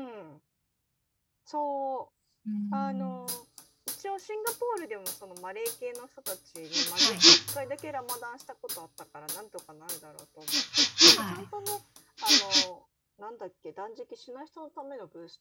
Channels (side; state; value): both; identical; correlation 1.00